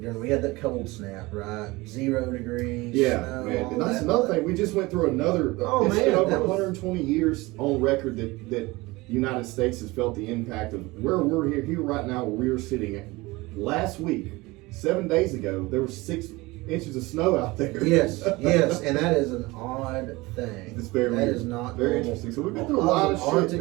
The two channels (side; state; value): left; quieter; 21.9 dB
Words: We had that cold snap, right? 0 degrees. Yeah, snow, man. all And that's that. another thing. We just went through another. It's been over that was- 120 years on record that the United States has felt the impact of where we're here right now, where we are sitting. Last week, 7 days ago, there was 6 inches of snow out there. Yes, and that is an odd thing. It's very That weird. is not very normal. interesting. So we've been through a lot of shit, Arctic